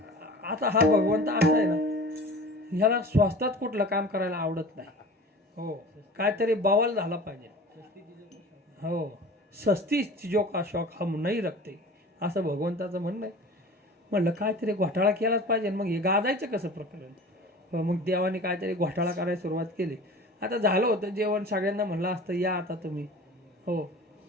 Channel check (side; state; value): both; normal; correlation 0.40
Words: आता हा भगवंत असा आहे ना, ह्याला स्वस्तात कुठलं काम करायला आवडत नाही. हो, काहीतरी बवाल झाला पाहिजे. हो, सस्ती चीजों का शौक हम नाही रखते, असं भगवंताचं म्हणणं आहे. म्हणलं काहीतरी घोटाळा केलाच पाहिजे. मग हे गाजायचं कसं प्रकरण? मग देवाने काहीतरी घोटाळा करायला सुरुवात केली. आता झालं होतं जेवण, सगळ्यांना म्हणलं असतं या आता तुम्ही. हो,